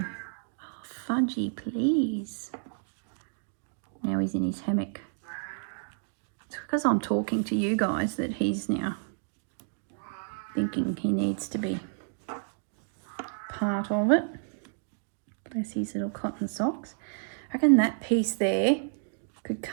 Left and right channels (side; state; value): left; silent; digital silence